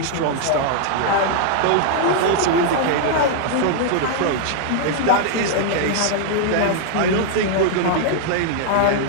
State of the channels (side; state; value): both; different; correlation 0.00